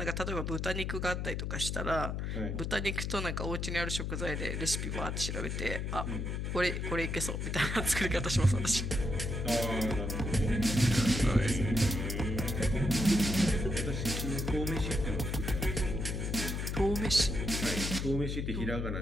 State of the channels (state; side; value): noise; left; hum, 2 dB below the sound